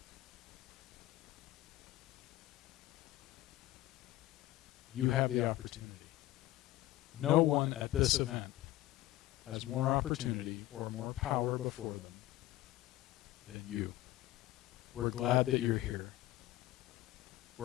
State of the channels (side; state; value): right; quieter; 15.8 dB